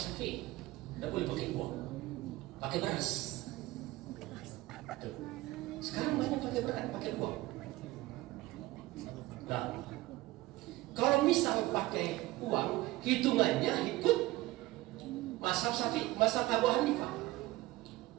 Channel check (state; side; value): quieter; left; 18.6 dB